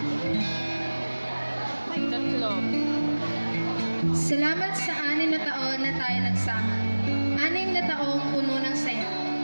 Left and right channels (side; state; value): both; inverted; correlation -1.00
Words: Tatlo. Salamat sa 6 na taon na tayo nagsama. 6 na taong puno ng saya.